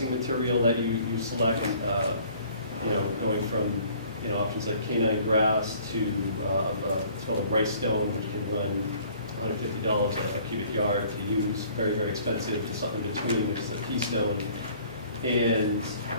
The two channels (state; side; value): inverted; both; correlation -0.55